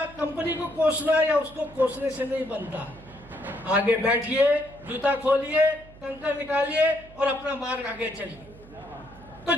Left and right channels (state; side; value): noise; right; hum, 21 dB below the sound